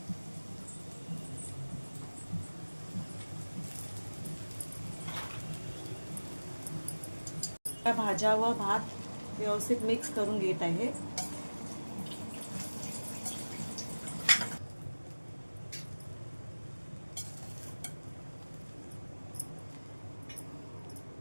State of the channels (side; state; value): both; inverted; correlation -1.00